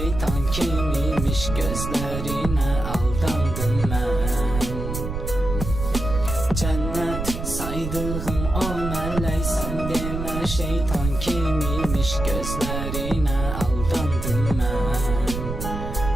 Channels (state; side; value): noise; right; rumble, 5 dB below the sound